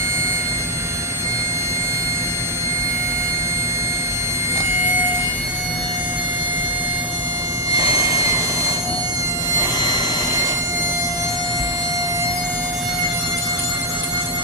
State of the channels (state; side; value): normal; both; correlation -0.01